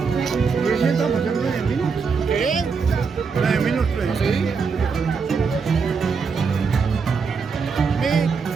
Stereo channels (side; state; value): left; quieter; 5.3 dB